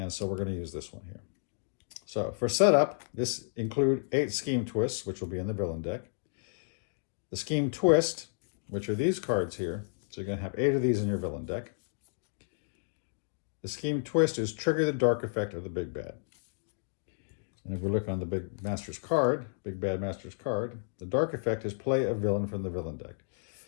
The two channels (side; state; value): right; silent; digital silence